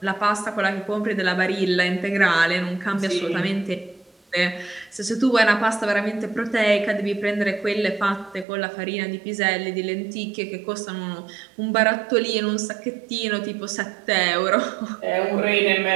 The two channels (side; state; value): left; drops out; at 8.5 s